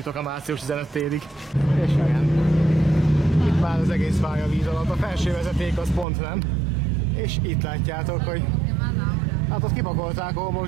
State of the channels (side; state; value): left; drops out; at 6.1 s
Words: a március 15 térig. És olyan. Itt már az egész pálya víz alatt, a felső vezeték az pont nem. És itt látjátok, hogy hát ott kipakolták a